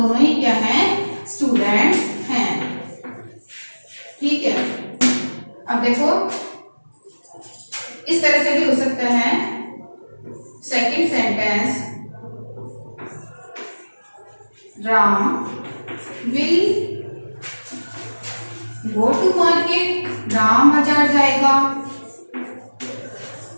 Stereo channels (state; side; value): inverted; both; correlation -1.00